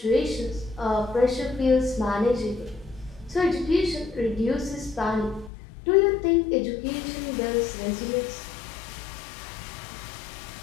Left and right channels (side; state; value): right; drops out; at 5.5 s